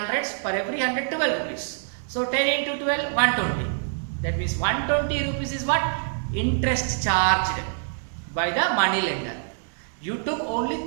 Per every 100, 12 rupees. So 10 into 12, 120. That means 120 rupees is what? Interest charged by the money lender. You took only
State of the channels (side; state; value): left; silent; 61 dB below the other